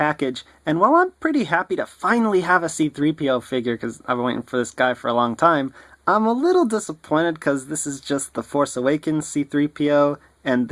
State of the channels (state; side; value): identical; both; correlation 1.00